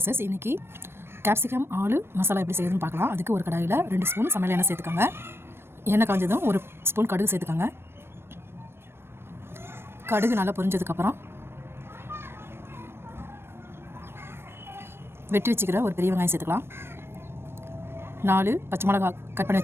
இன்றைக்கி கேப்சிகம் ஆலு மசாலா எப்படி செய்யுதுன்னு பார்க்கலாம். அதுக்கு ஒரு கடாயில் 2 ஸ்பூன் சமையல் எண்ணெய் சேர்த்துக்கோங்க. எண்ணெய் காஞ்சதும் 1 ஸ்பூன் கடுகு சேர்த்துக்கோங்க. கடுகு நல்லா பொரிஞ்சதுக்கப்புறம் வெட்டி வச்சுக்கிற ஒரு பெரிய வெங்காயம் சேர்த்துக்கலாம். 4 பச்சை மிளகா கட் பண்ணி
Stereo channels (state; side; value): late; left; 0.12 ms